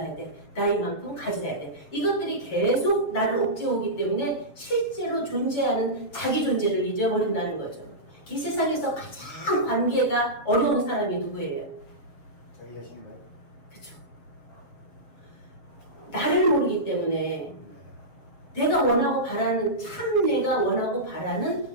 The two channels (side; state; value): right; late; 6.9 ms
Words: 돼. 나 이만큼 가져야 돼. 이것들이 계속 나를 옥죄오기 때문에 실제로 존재하는 자기 존재를 잊어버린다는 거죠. 이 세상에서 가장 관계가 어려운 사람이 누구예요? 자기 자신인가요? 그쵸. 나를 모르기 때문에 내가 원하고 바라는, 참 내가 원하고